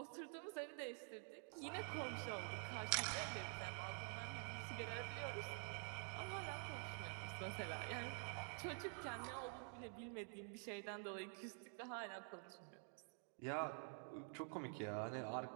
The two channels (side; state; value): left; quieter; 38.6 dB